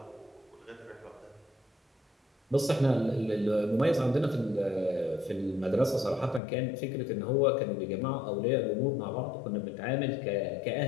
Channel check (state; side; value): drops out; right; at 6.4 s